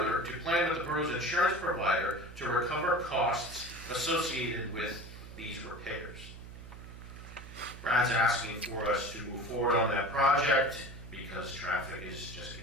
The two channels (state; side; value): noise; right; hum, 14 dB below the sound